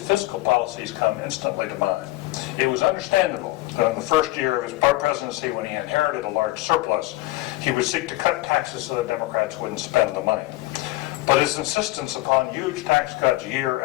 fiscal policies come instantly to mind. It was understandable that in the first year of his presidency, when he inherited a large surplus, he would seek to cut taxes so the Democrats wouldn't spend the money. But his insistence upon huge tax cuts year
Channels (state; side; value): quieter; right; 18.7 dB